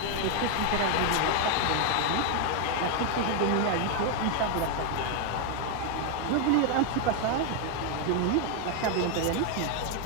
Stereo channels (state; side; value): different; both; correlation 0.01